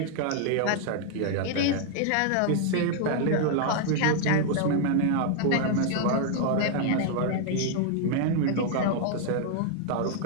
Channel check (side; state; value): both; different; correlation 0.00